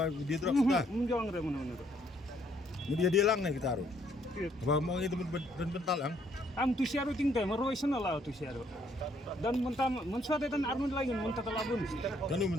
di drop ta Menjauh dari mana. dia lang na kita ro ba mong gi temen bental ang Am tu siaru tinggal merui sana lah tu siaru. Dan mensuat dan arun lagi mentah telabun. kanu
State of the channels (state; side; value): normal; both; correlation 0.68